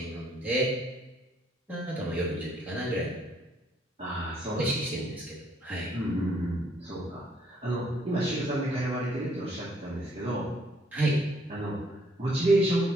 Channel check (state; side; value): normal; both; correlation 0.67